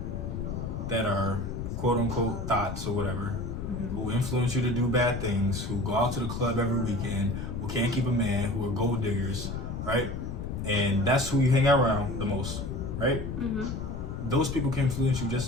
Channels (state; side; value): noise; left; rumble, 5 dB below the sound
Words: that are quote unquote thoughts or whatever, who influence you to do bad things, who go out to the club every weekend, who can't keep a man, who are gold diggers, right? And that's who you hang out around the most, right? Those people can influence you just